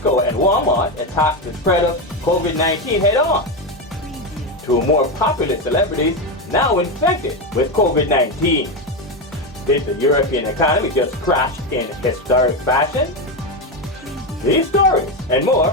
and Walmart attacked the spread of COVID-19 head-on. Two more popular celebrities now infected with COVID-19. Did the European economy just crash in historic fashion? These stories and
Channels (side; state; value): both; normal; correlation 0.12